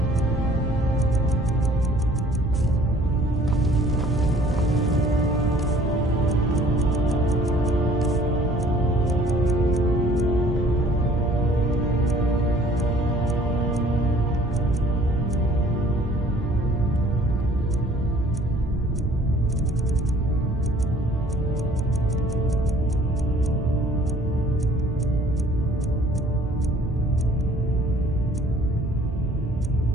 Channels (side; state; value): both; normal; correlation 0.55